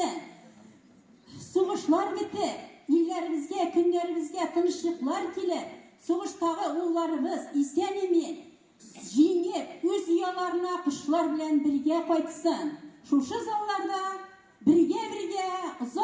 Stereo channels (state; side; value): identical; both; correlation 1.00